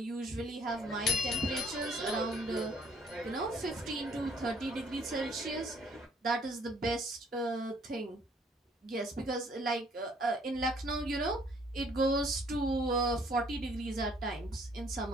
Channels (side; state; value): both; normal; correlation 0.61